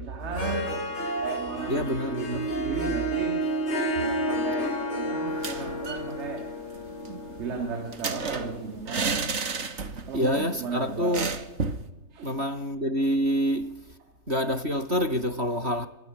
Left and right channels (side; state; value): left; late; 3.9 ms